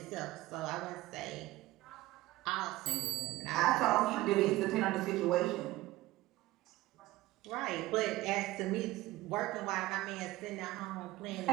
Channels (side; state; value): left; quieter; 17.8 dB